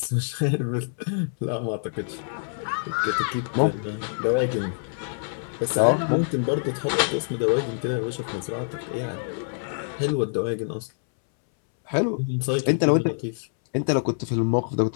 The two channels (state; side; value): silent; right; 61 dB below the other